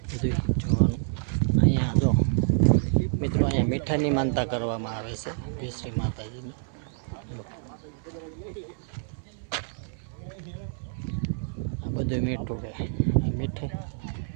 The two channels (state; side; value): silent; left; 60 dB below the other